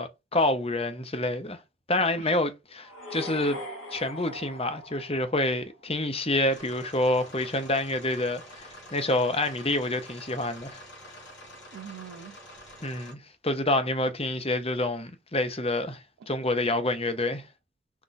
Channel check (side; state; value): both; normal; correlation 0.32